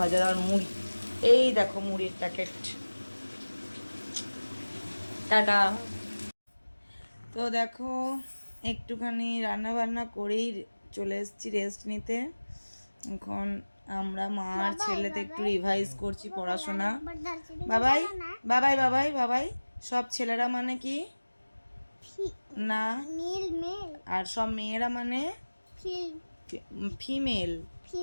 ভাজা আর মুড়ি, এই দেখো মুড়ির প্যাকেট। টাটা। তো দেখো একটুখানি রান্না বান্না করেই চলে এসেছি রেস্ট নিতে। এখন আমরা মা আর ছেলেতে একটু রিভাইজ করছি পড়াশোনা। বাবাই বাবাই বাবাই বাবাই, সব ছেলেরা মানে কি না, আর সব মেয়েরা মানে ফিমেল।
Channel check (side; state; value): both; inverted; correlation -1.00